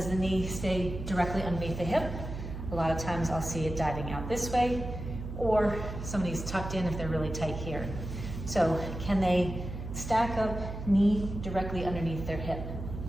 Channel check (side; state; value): right; noise; hum, 7 dB below the sound